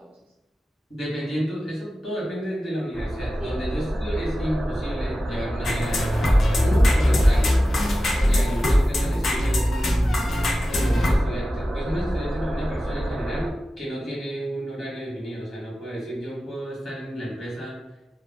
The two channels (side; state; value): both; normal; correlation 0.94